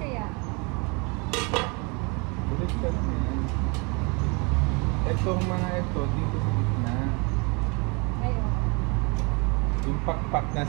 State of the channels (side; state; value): left; quieter; 30.9 dB